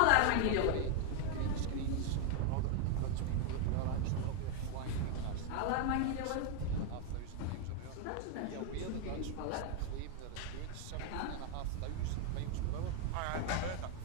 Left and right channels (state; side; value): different; both; correlation 0.00